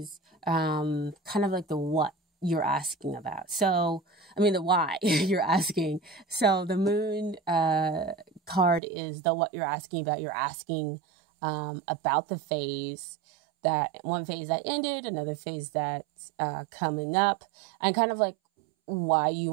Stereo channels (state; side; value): drops out; left; at 8.8 s